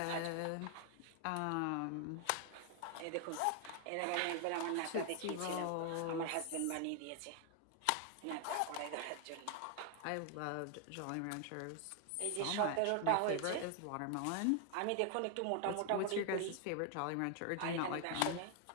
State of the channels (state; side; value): different; both; correlation 0.00